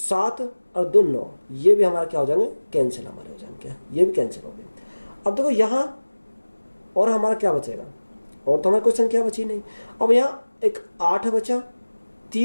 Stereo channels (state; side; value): inverted; both; correlation -1.00